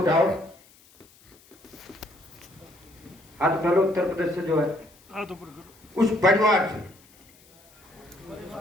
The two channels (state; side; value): noise; left; hiss, 27 dB below the sound